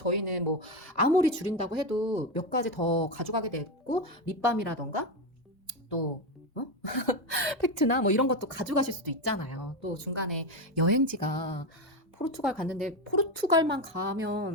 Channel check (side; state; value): both; normal; correlation 0.12